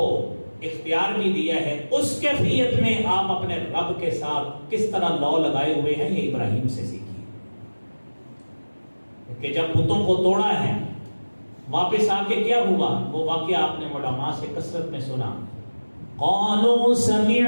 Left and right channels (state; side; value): inverted; both; correlation -1.00